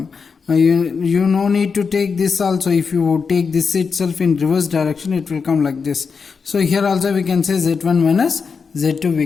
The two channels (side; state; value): right; quieter; 5.5 dB